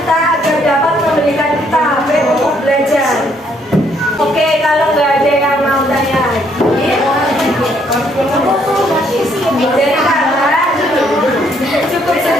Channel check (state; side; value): normal; both; correlation 0.69